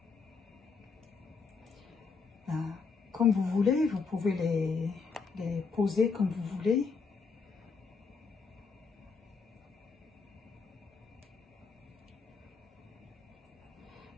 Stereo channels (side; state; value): right; quieter; 5.0 dB